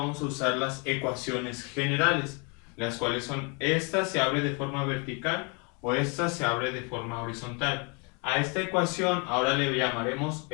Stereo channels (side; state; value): right; quieter; 33.3 dB